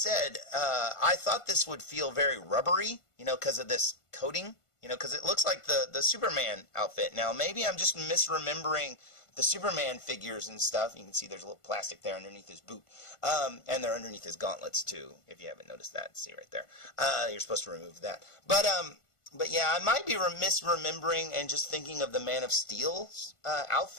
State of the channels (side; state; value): right; late; 1.5 ms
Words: I thought this would feel very rubbery, because of this coating You know, because it looks like the Superman outfit. Now, maybe I'm just misremembering the Superman figures and stuff. You can see there's a little plastic there underneath his boot. And they're underneath his gauntlets, too, if you haven't noticed that. See right there. You're supposed to remove that. But yeah, I might be misremembering and just thinking of the Man of Steel's